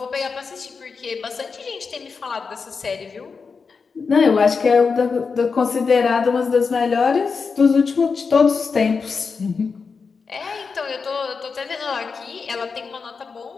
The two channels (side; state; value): right; quieter; 5.1 dB